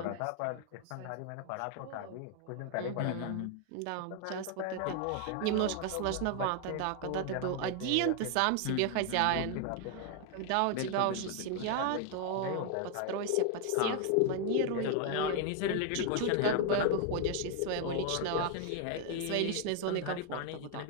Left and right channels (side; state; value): both; different; correlation 0.00